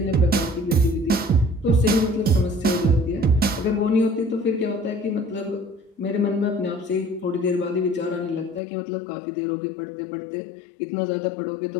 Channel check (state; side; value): drops out; right; at 8.6 s